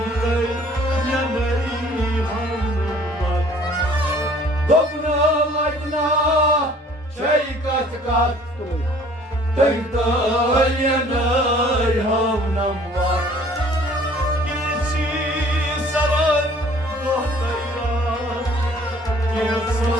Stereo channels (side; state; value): both; normal; correlation 0.54